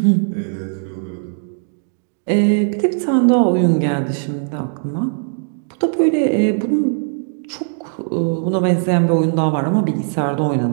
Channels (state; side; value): silent; left; digital silence